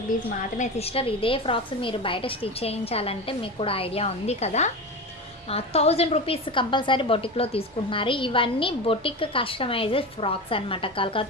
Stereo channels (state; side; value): normal; both; correlation 0.25